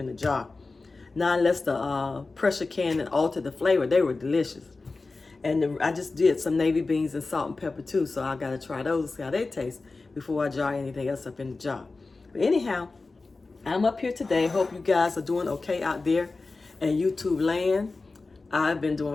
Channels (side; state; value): right; quieter; 3.7 dB